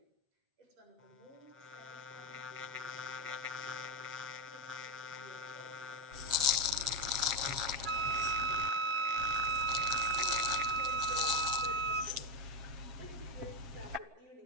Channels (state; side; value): late; left; 7.4 ms